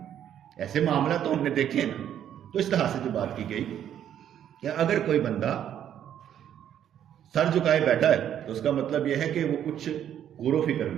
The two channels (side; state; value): left; quieter; 10.1 dB